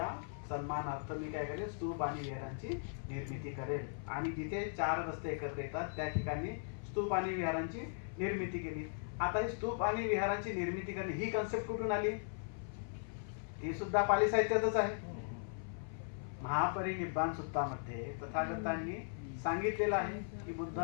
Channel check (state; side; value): silent; right; 52 dB below the other